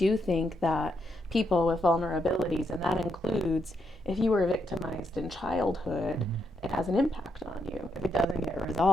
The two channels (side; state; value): both; normal; correlation 0.80